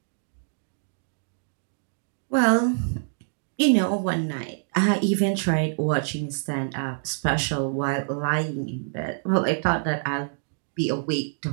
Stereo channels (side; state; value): left; silent; digital silence